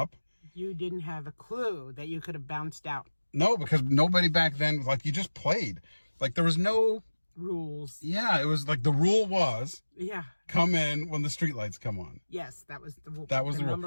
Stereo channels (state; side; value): inverted; both; correlation -1.00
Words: You didn't have a clue that you could have bounced out. No, because nobody back then, you just played. There was no rules. Yeah, it was the rule was come in when the streetlights come on. Yes, that was the rule. That was the